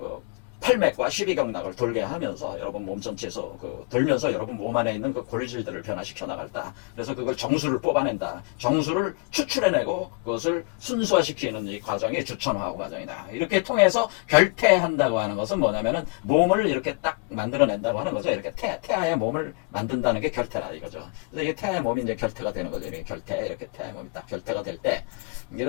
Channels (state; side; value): quieter; right; 32.1 dB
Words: 팔맥과 12경락을 돌게 하면서 여러분 몸 전체에서 돌면서 여러분 몸 안에 있는 그 골질들을 변화시켜 나갈다. 그래서 그걸 정수를 뽑아낸다. 정수를 추출해내고 그것을 순수화시키는 이 과정이 주천화우 과정이다. 이렇게 통해서 결태한다고 하는 것은 뭐냐면은 몸을 이렇게 딱 만들어낸다고 하는 거죠. 이렇게 태아의 몸을 만든다는 게 결태라 이거죠. 그래서 이게 태아의 몸이 이제 결태가 되는 거죠. 이렇게 이렇게 태아의 몸이 딱 결태가 될 때,